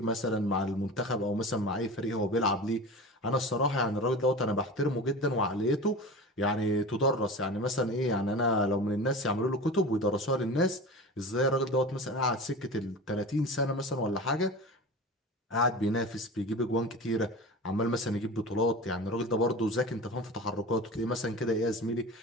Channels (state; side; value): normal; both; correlation 0.33